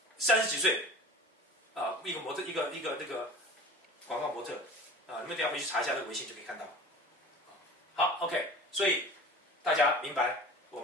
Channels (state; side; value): normal; both; correlation 0.41